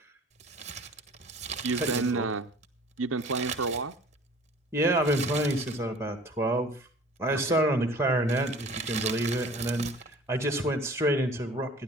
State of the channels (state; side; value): normal; both; correlation 0.47